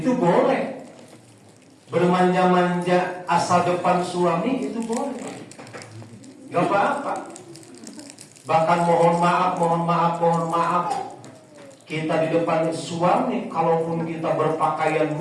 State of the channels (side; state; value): both; identical; correlation 1.00